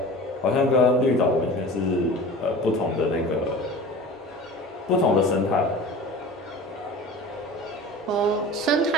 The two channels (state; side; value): normal; both; correlation 0.37